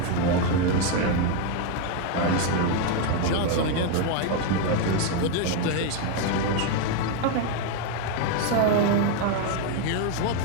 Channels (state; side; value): different; both; correlation 0.02